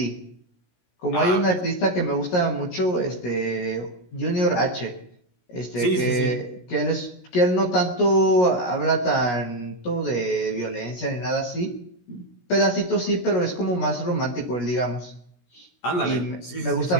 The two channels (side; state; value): right; late; 17 ms